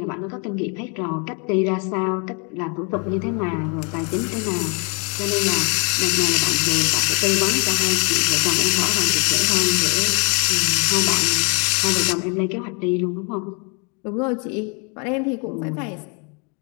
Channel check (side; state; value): right; quieter; 35.5 dB